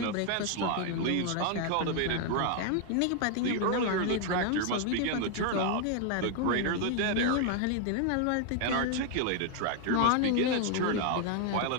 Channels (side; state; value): both; different; correlation 0.00